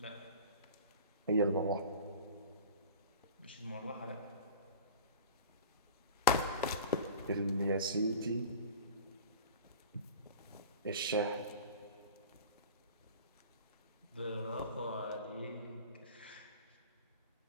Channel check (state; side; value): inverted; both; correlation -0.38